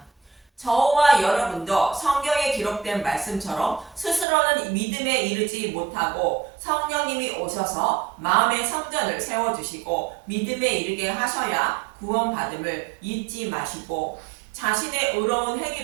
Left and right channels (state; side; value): drops out; left; at 4.2 s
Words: 저와 여러분도 성경에 기록된 말씀처럼 스스로는 믿음에 이르지 못하고 성령님이 오셔서 마음의 성전을 세워주시고 믿음에 이르게 하셔야 구원받음을 잊지 마시고, 자신의 의로운